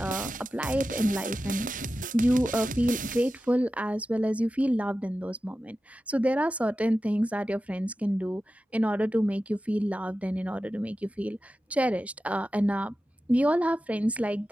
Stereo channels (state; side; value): normal; both; correlation 0.93